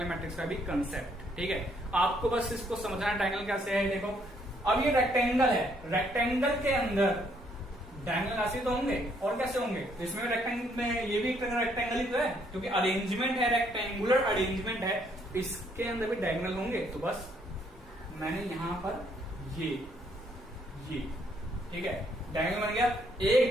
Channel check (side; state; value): both; normal; correlation 0.69